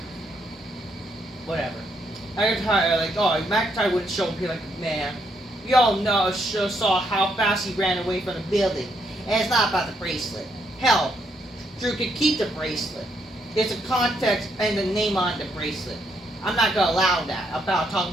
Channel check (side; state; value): both; normal; correlation 0.75